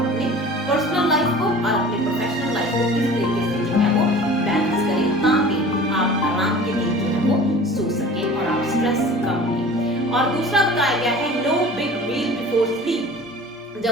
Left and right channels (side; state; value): both; normal; correlation 0.42